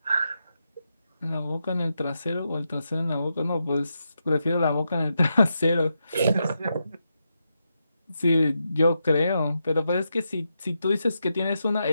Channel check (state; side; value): inverted; both; correlation -0.85